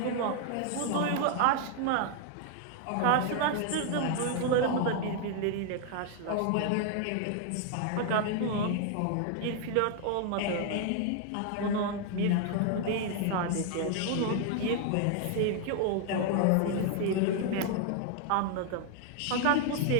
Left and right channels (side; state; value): both; different; correlation 0.00